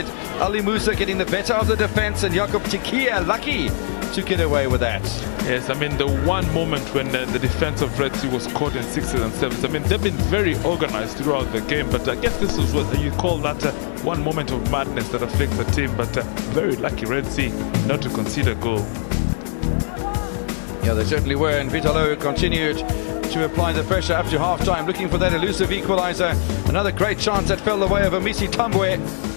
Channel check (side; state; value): right; silent; 65 dB below the other